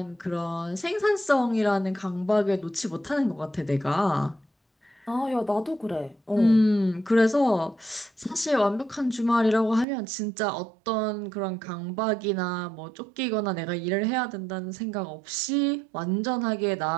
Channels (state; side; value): drops out; left; at 9.9 s